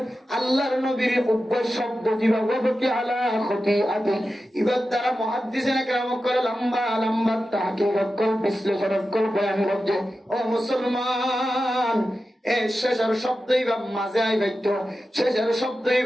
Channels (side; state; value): both; normal; correlation 0.92